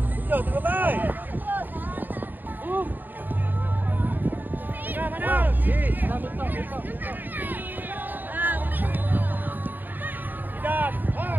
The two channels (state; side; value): late; left; 0.089 ms